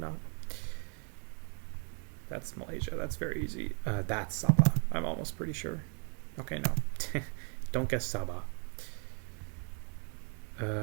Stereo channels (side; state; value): left; quieter; 38.7 dB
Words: not. That's Malaysia. That's very easy. That's Sabah. I'm almost pretty sure. Okay, no. Don't guess Sabah.